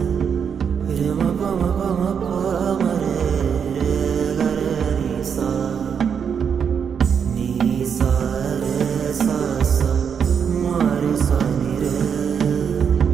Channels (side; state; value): left; quieter; 7.1 dB